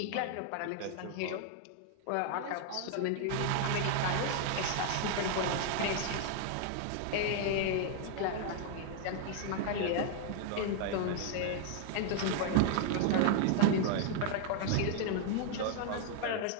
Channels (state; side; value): different; both; correlation 0.00